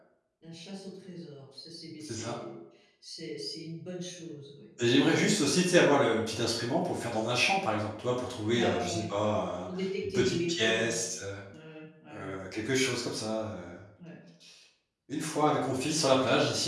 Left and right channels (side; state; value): both; identical; correlation 1.00